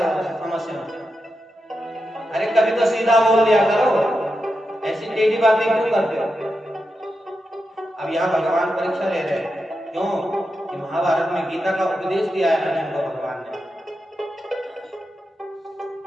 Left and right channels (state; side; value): normal; both; correlation 0.88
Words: हो समस्या में? अरे कभी तो सीधा बोल दिया करो, ऐसी टेढ़ी बातें क्यों करते हो? अब यहाँ भगवान परीक्षा ले रहे हैं, क्यों कि महाभारत में गीता का उपदेश दिया है अर्जुन को भगवान ने।